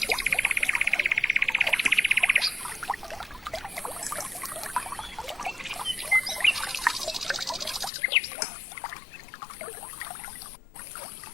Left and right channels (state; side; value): drops out; right; at 7.9 s